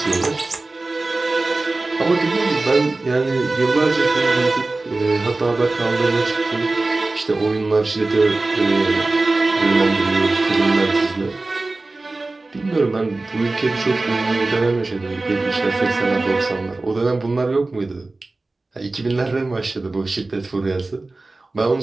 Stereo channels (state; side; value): quieter; left; 3.2 dB